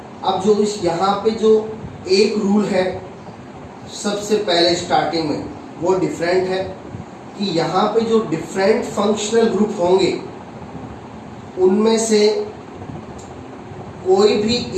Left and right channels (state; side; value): identical; both; correlation 1.00